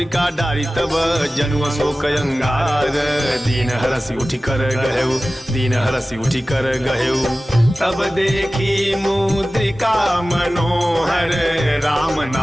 डारी तब जनु शोक अंगार। दीन हरसि उठि कर गहेउ, दीन हरसि उठि कर गहेउ। तब देखी मुद्रिका मनोहर, राम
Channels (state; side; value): normal; both; correlation 0.96